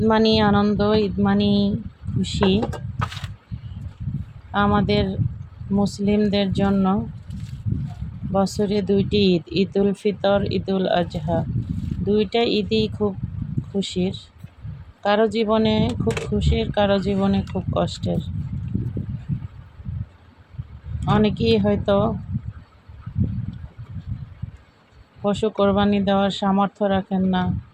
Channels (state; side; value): identical; both; correlation 1.00